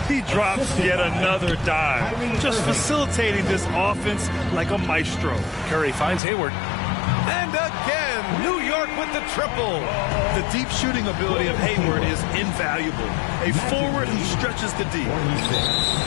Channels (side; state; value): right; drops out; at 6.2 s